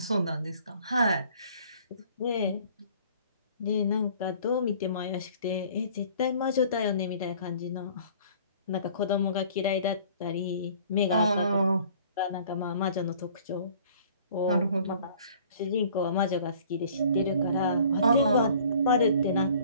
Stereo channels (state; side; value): inverted; both; correlation -0.52